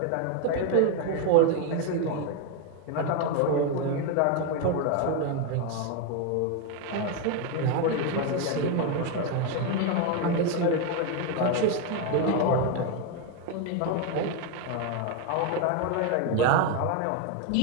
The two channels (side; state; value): both; different; correlation 0.01